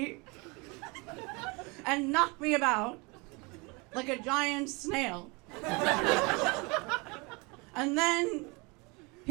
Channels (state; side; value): quieter; left; 28.4 dB